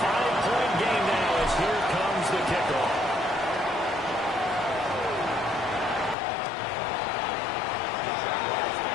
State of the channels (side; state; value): right; drops out; at 6.2 s